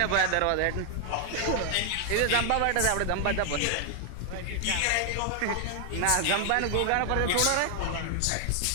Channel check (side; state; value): both; different; correlation 0.00